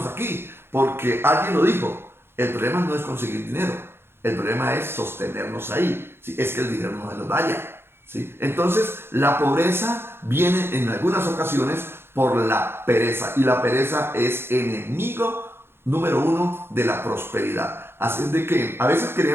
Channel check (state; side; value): late; left; 0.11 ms